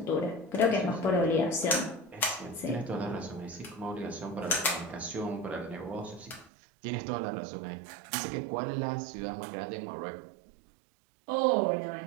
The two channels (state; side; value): drops out; left; at 6.5 s